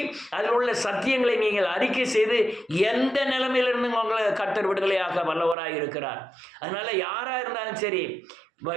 அதில் உள்ள சத்தியங்களை நீங்கள் அறிக்கை செய்து எந்த நிலைமையிலிருந்து உங்களை கர்த்தர் விடுதலையாக வல்லவராக இருக்கிறார். அதனால் யாராக இருந்தாலும் சரி,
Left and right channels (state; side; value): drops out; left; at 5.6 s